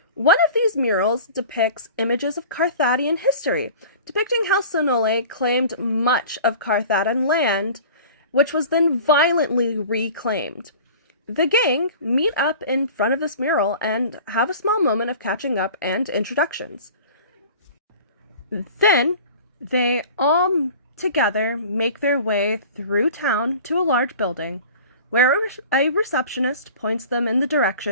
One of these murals depicts images of Carthadian history, depicting how Sonole claimed much of Carthadian land, which was then violently reclaimed. The gang meet up in front of this mural and have a small moment of catching up and introductions. Then, they all together make their way through town to a large building, where a receptionist points them in the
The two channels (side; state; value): both; inverted; correlation -0.41